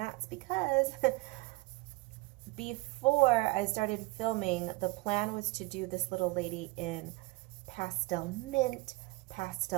because before I started filming, the plan was to do this little lady in pastel mint,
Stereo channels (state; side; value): quieter; left; 23.4 dB